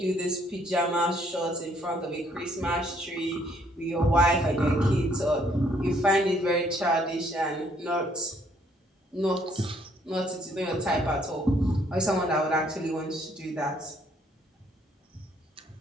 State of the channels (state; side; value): normal; both; correlation 0.66